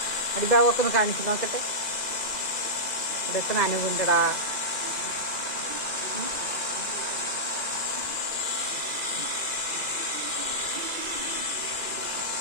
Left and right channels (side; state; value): right; late; 2.0 ms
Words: അടിഭാഗമൊക്കെ ഒന്ന് കാണിച്ചു നോക്കട്ടെ. ഇവിടെയൊക്കെ നനവുണ്ടടാ.